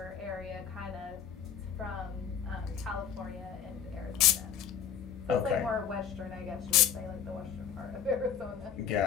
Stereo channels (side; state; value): right; quieter; 8.1 dB